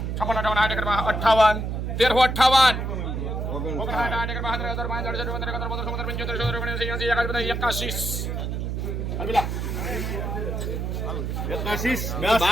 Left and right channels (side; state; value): right; noise; hum, 2 dB below the sound